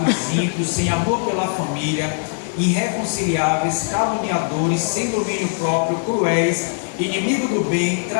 ímpios, sem amor pela família, irreconciliáveis, caluniadores, sem domínio próprio, cruéis, inimigos do bem,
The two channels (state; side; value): silent; right; 63 dB below the other